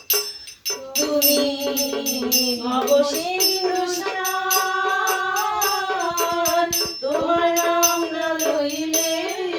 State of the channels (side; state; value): both; identical; correlation 1.00